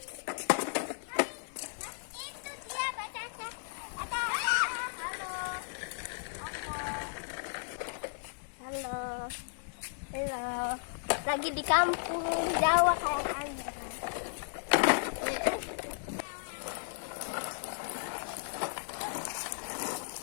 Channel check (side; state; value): right; silent; digital silence